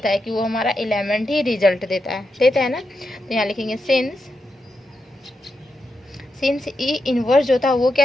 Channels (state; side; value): normal; both; correlation 0.86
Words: है कि वो हमारा एलिमेंट ही रिजल्ट देता है ना। तो यहाँ लिखेंगे सिंस ई इन्वर्स जो था वो